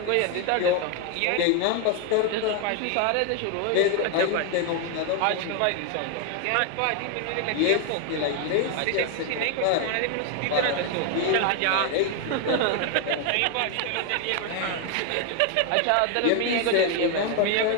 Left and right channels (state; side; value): different; both; correlation 0.01